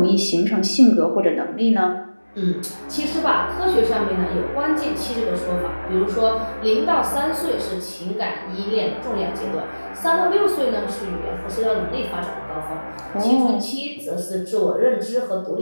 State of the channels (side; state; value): both; inverted; correlation -1.00